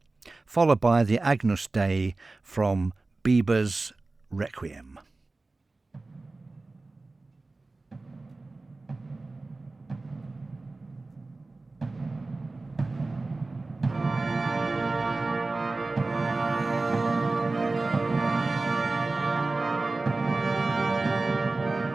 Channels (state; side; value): quieter; left; 3.3 dB